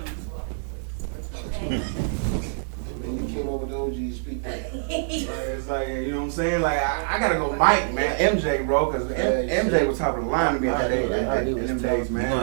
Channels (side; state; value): left; silent; 61 dB below the other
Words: when you came over to OG, speak that. it's like, you know what I'm saying? Like, I gotta go Mike, man. MJ, bro, because MJ was top of the line to me in them days, man. You